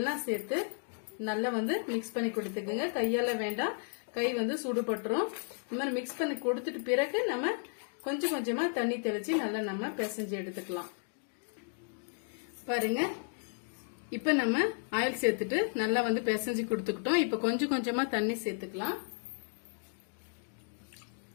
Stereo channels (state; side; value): silent; right; 55 dB below the other